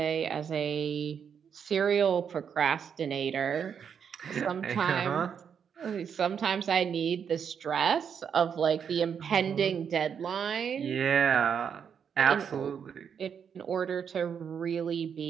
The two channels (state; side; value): quieter; left; 7.4 dB